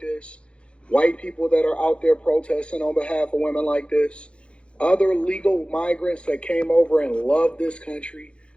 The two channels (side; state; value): right; late; 0.058 ms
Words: white people that are out there protesting on behalf of women like this, other legal migrants that came over and love this country.